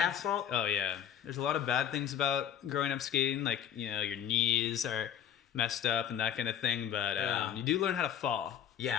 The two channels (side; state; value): right; quieter; 9.7 dB